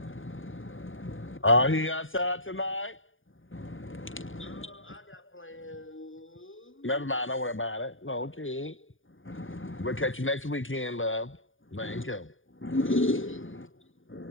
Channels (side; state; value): right; late; 0.58 ms